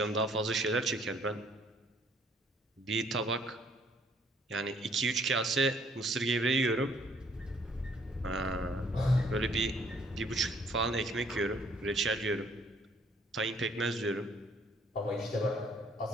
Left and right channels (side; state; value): both; normal; correlation 0.63